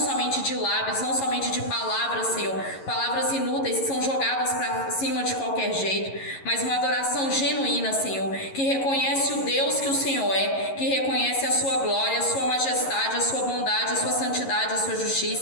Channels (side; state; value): right; late; 11 ms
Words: de lábios, não somente de palavras, Senhor, palavras inúteis que são jogadas para cima de qualquer jeito, mas uma adoração genuína, Senhor, que reconhece o Deus que o Senhor é, que reconhece a sua glória, a sua majestade, a sua bondade, a sua santidade, a sua